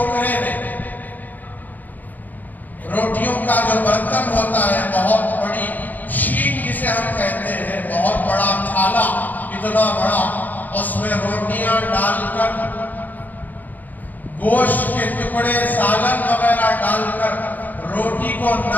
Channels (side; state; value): right; late; 0.083 ms